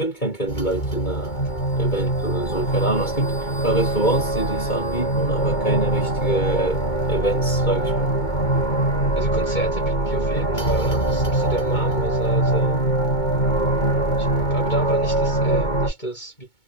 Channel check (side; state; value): right; late; 2.2 ms